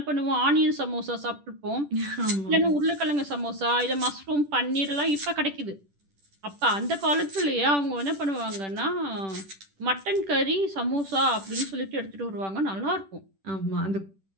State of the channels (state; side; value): late; left; 10 ms